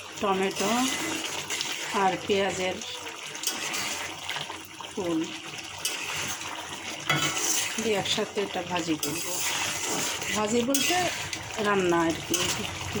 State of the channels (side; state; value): both; identical; correlation 1.00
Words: টমেটো আর পেঁয়াজের ফুল দিয়ে একসাথে এটা ভাজি করব। ভাজি বলতে রান্না আর কি,